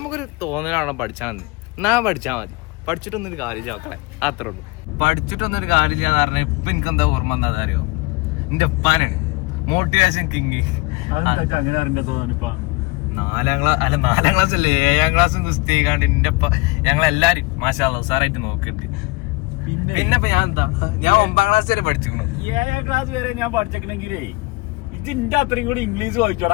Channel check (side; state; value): right; quieter; 24.2 dB